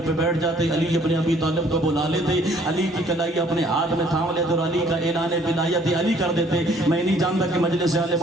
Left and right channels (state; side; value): normal; both; correlation 0.59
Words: پہ بیٹھ جاتے، علی ابن ابی طالب کو بلا لیتے، علی کی کلائی اپنے ہاتھ میں تھام لیتے اور علی کا اعلان ولایت علی کر دیتے۔ میں نہیں جانتا کہ مجلس آل